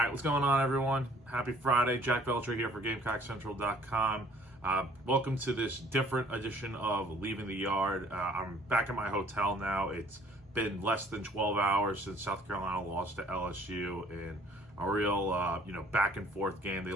what's going on, everyone? Happy Friday. Jack Veltri here for GamecockCentral.com. Welcome to this different edition of Leaving the Yard. I'm back at my hotel now. It's been less than 12 hours since South Carolina lost to LSU in a real, back and forth game. They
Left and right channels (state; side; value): normal; both; correlation 0.57